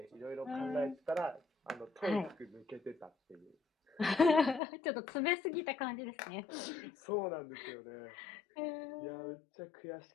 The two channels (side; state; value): right; drops out; at 4.6 s